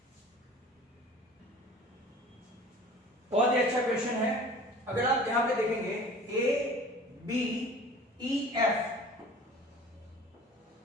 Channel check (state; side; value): normal; both; correlation 0.45